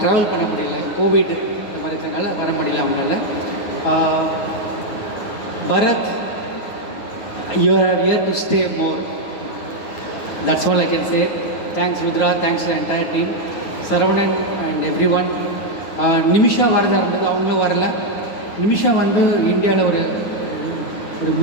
ட்ராவல் பண்ண முடியல, கோவிட் இந்த மாதிரி இருக்கிறனால வர முடியல அவங்களால. Bharath, you are here to stay more. That's all I can say. Thanks Rudra, thanks entire team, Saravanan and everyone. Nimisha வரதா இருந்தது, அவங்களும் வரல. நிமிஷா வந்து இந்தியாவில் ஒரு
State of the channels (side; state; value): right; late; 9.5 ms